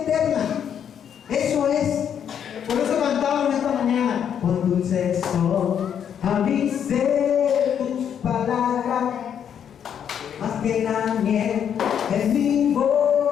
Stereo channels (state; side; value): quieter; right; 8.6 dB